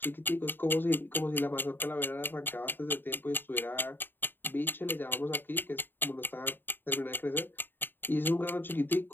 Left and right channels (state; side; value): late; right; 0.095 ms